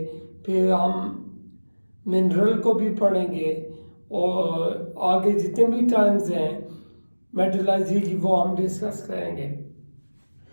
फिर हम मिनरल को भी पढ़ेंगे और आगे जितने भी टर्म्स हैं मेटलर्जी की वो हम डिस्कस करेंगे।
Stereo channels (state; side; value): inverted; both; correlation -1.00